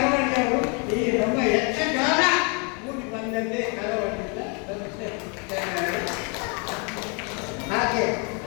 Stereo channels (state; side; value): quieter; right; 34.6 dB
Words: ಈ ನಮ್ಮ ಯಕ್ಷಗಾನ ಕೂಡಿ ಬಂದಂತೆ ಕಳವಳಿಯಿಂದ ಹಾಗೆ